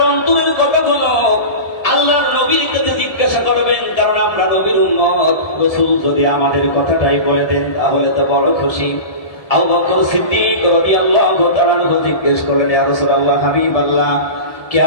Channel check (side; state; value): right; late; 1.7 ms